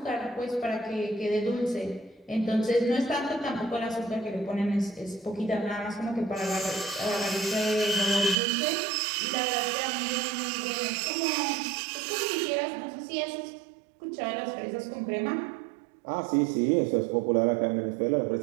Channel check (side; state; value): left; drops out; at 8.3 s